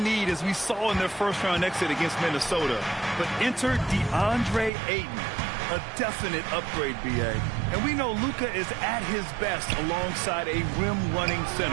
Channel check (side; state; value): left; drops out; at 4.7 s